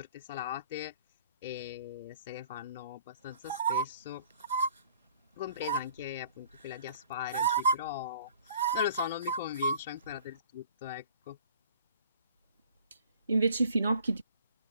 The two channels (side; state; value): both; inverted; correlation -0.54